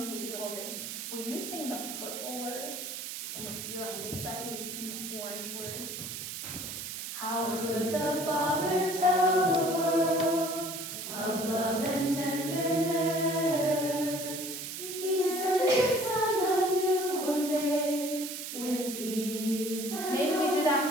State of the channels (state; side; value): noise; right; hiss, 7 dB below the sound